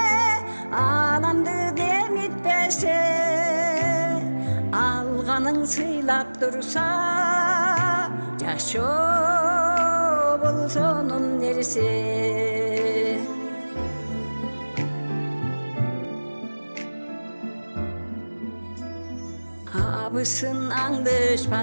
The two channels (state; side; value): inverted; both; correlation -1.00